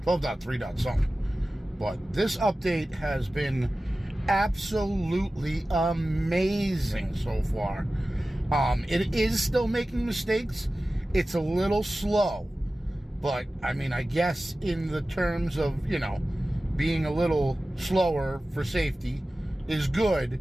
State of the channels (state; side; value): normal; both; correlation 0.96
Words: 12.3. something. But this update has been absolutely amazing so far. It is still making mistakes. It's a little slow. But, I mean, I guess in the terms of, being a little slower for safety is good.